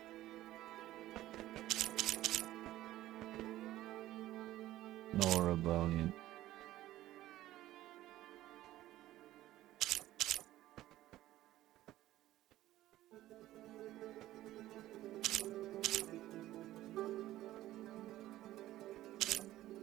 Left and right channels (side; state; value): left; quieter; 15.0 dB